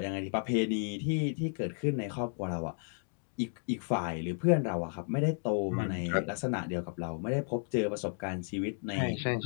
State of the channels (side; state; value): right; silent; 56 dB below the other